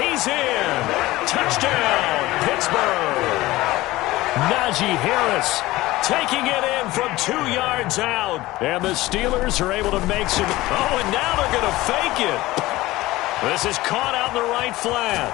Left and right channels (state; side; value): quieter; right; 18.3 dB